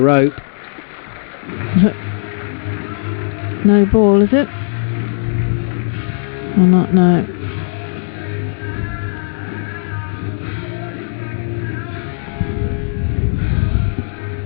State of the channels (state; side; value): silent; right; digital silence